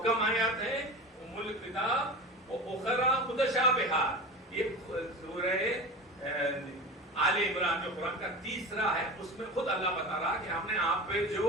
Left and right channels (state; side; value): normal; both; correlation 0.30